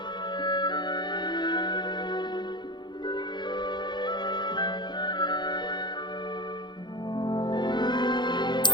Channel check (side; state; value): right; late; 0.21 ms